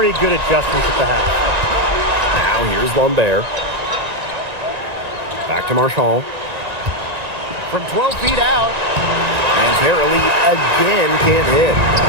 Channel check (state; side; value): late; left; 1.9 ms